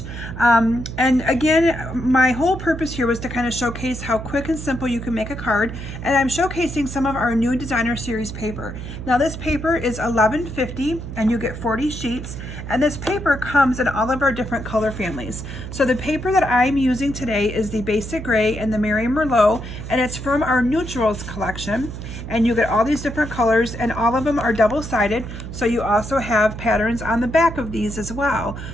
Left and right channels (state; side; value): noise; right; hum, 9 dB below the sound